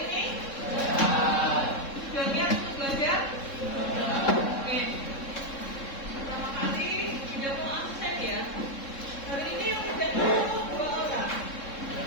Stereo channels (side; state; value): right; late; 3.7 ms